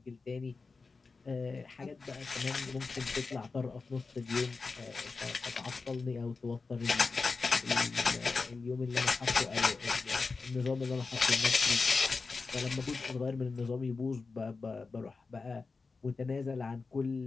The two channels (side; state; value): right; quieter; 4.3 dB